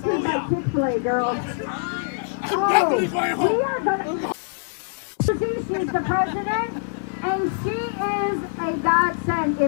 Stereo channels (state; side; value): silent; right; digital silence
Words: by Chick-fil-A, girls. definitely going home. We are gonna. She's the president, and she is a godsend.